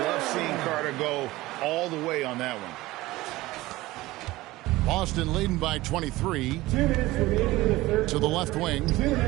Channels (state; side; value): quieter; left; 18.6 dB